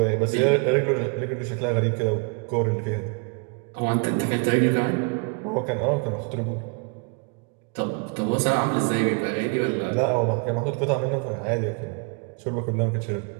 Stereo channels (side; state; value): left; quieter; 33.4 dB